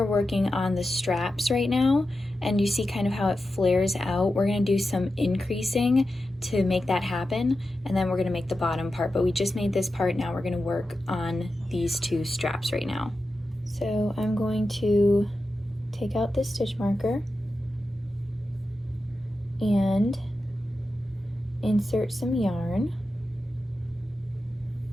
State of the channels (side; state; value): both; normal; correlation 0.91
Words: working on the straps right now, and you see kind of how it flares out. We're going to do some increasing to make that happen, and then we're going to make the bottom part, but we just made this part. Now we're going to work on these 2 straps right now. So I'm going to take out this stitch marker and insert some yarn,